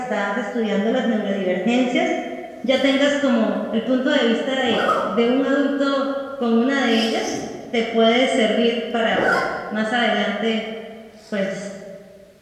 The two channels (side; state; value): both; identical; correlation 1.00